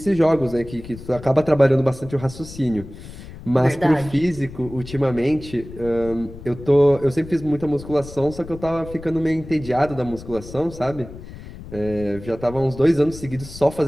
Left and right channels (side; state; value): left; noise; rumble, 15 dB below the sound